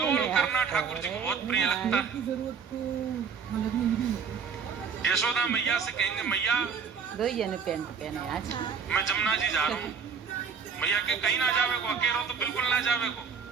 करना ठाकुर जी को बहुत प्रिय लगता है। यशोदा मैया से कहेंगे मैया मैं जमुना जी जा रहा हूँ। मैया के कहीं ना जावे को, अकेलो तो बिल्कुल ना जावे को,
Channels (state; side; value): quieter; left; 6.3 dB